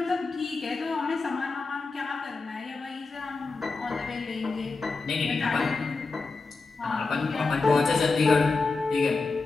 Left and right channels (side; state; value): right; quieter; 4.0 dB